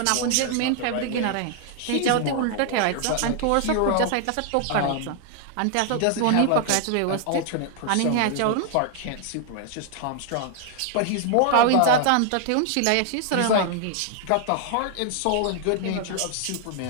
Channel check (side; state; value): both; different; correlation 0.00